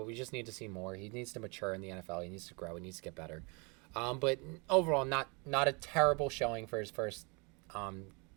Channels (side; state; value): left; quieter; 31.2 dB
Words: we just need to see more. He needs to mature in the NFL. He needs to grow. He needs to get better. But overall, not a terrible showing for his first